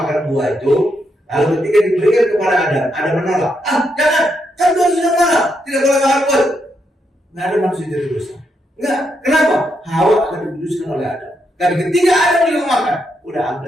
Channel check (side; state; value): both; normal; correlation 0.80